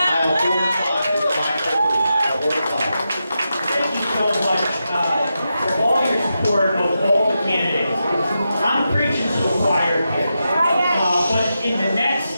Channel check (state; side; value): inverted; both; correlation -0.88